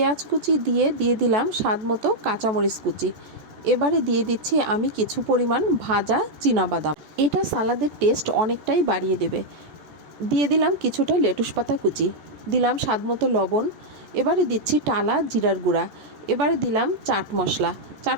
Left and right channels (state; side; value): late; left; 14 ms